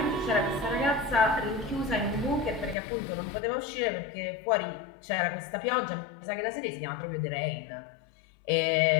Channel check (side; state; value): right; drops out; at 2.8 s